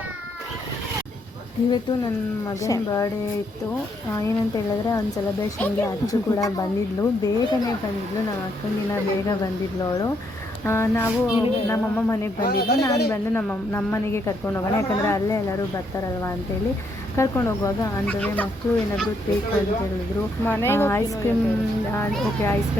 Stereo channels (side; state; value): both; normal; correlation 0.74